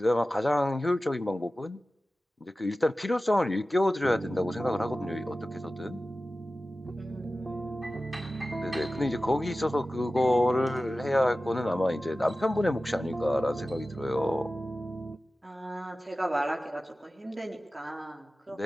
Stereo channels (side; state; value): both; normal; correlation 0.95